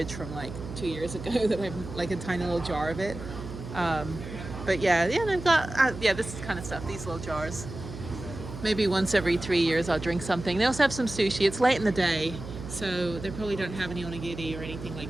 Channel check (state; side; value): noise; right; hum, 11 dB below the sound